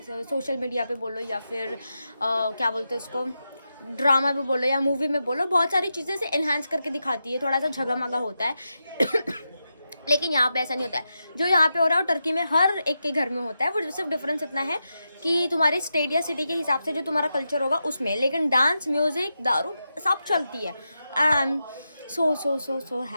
सोशल मीडिया पे बोलो या फिर क्या बोलते हैं उसको, ड्रामा में बोलो या मूवी में बोलो, बहुत सारी चीज़ें से एनहांस करके दिखाती है, थोड़ा सा झगमगा होता है. लेकिन यहाँ पे ऐसा नहीं होता है. जो यहाँ पे हो रहा है वो टर्की में हर एक के घर में होता है. वो सिर्फ डिफरेंस इतना है कि तुम्हारे स्टेट या सिटी के हिसाब से जो तुम्हारा कल्चर होगा उसमें, लेकिन डांस, म्यूजिक, दारू सब चलती है. I am so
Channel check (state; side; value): inverted; both; correlation -0.88